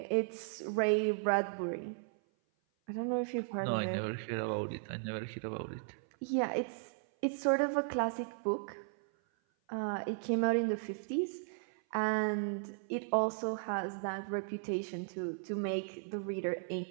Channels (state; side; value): silent; left; 54 dB below the other